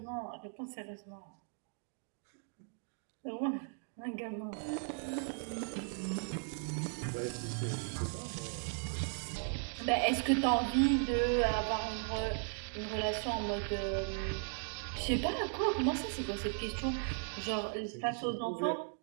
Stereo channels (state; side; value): silent; left; 53 dB below the other